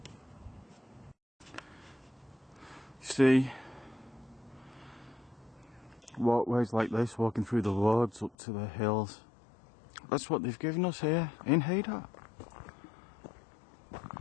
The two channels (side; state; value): right; drops out; at 8.3 s